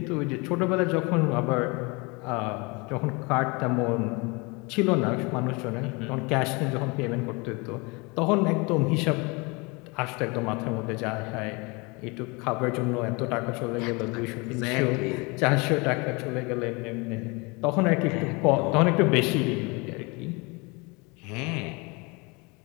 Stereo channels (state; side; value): quieter; right; 28.0 dB